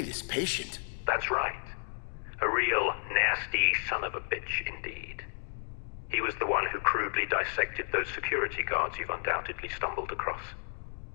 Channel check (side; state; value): right; silent; 56 dB below the other